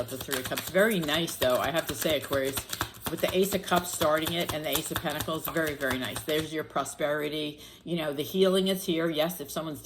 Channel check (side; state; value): both; identical; correlation 1.00